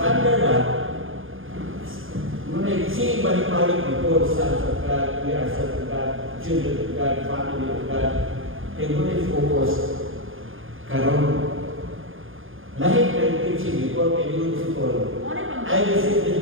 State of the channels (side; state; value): left; late; 0.59 ms